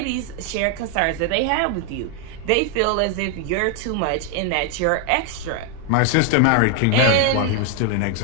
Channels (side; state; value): both; different; correlation 0.01